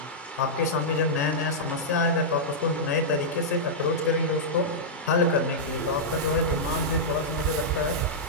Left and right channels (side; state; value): both; normal; correlation -0.10